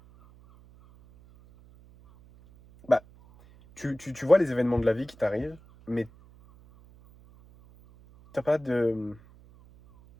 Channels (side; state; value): right; noise; hum, 25 dB below the sound